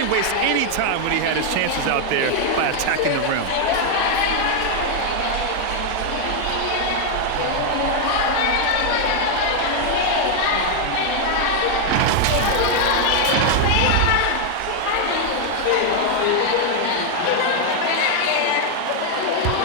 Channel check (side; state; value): both; different; correlation 0.00